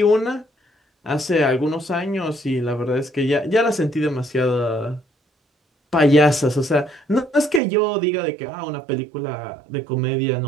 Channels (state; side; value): drops out; left; at 7.6 s